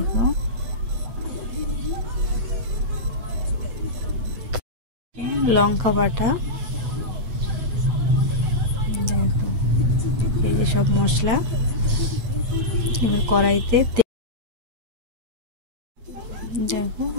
লঙ্কা বাটা, দেখো এই যে সব মশলা। এবার কড়াইতে দেখো,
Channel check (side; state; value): left; late; 8.0 ms